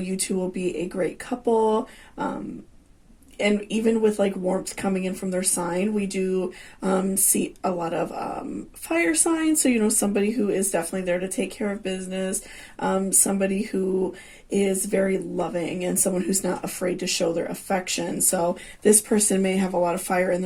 two will be a great couple. And even with like warmth coming in from their sign, we do see a lot of fire signs. So, somebody who is definitely there to take care of business, somebody who is very loving, and someone who's not afraid to show their affection. So this person may have a lot of fire in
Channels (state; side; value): identical; both; correlation 1.00